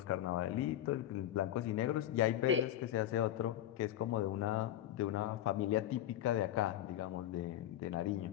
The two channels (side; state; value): right; quieter; 12.3 dB